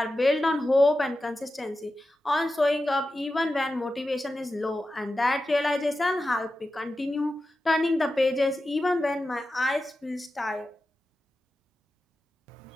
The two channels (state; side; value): normal; both; correlation 0.92